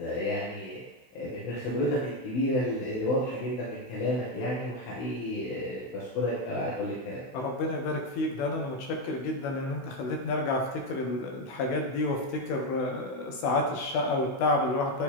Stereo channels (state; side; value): late; right; 16 ms